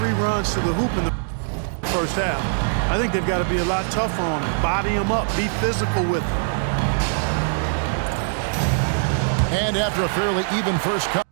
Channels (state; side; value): silent; left; digital silence